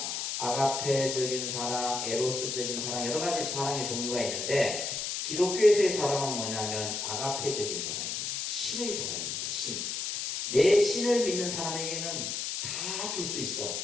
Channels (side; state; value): left; noise; hiss, 3 dB below the sound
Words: 아가페적인 사랑, 에로스적인 사랑, 여러 가지 사랑의 종류가 있는데, 기독교에서의 사랑은 뭐냐면 아가페적인 사랑입니다. 신의 사랑입니다. 신. 내 신을 믿는 사람에게는 다 줄 수